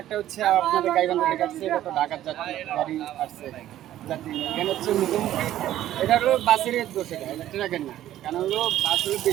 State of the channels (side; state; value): left; quieter; 12.9 dB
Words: হচ্ছে আপনাদের গাইবান্ধা থেকে আসছে, এটা তো ঢাকার গাড়ি আসছে যাত্রী এখানে হচ্ছে মুখোমুখি এটা হলো বাসের দোষ, এটা ট্রাকের না, কারণ হলো বাস হলো